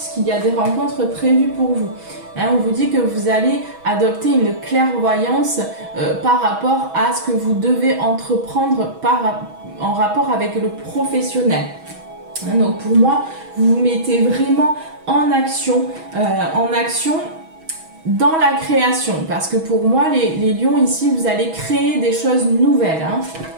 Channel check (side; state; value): left; late; 6.2 ms